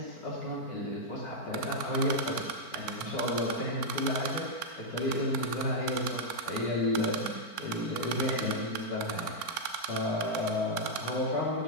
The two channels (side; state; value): right; late; 4.4 ms